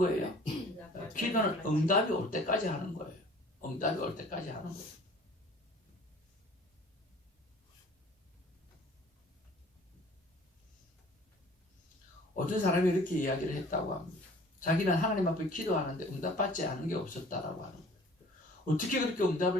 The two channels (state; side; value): normal; both; correlation 0.50